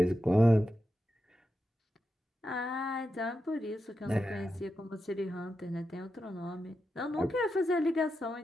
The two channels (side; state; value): both; normal; correlation 0.88